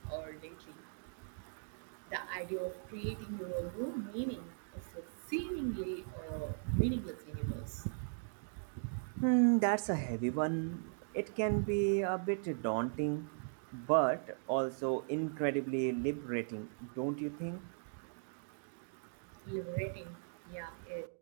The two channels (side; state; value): left; silent; digital silence